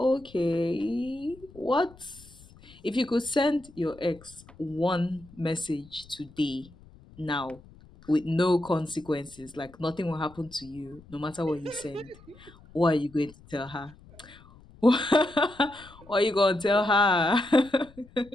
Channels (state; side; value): noise; left; rumble, 23 dB below the sound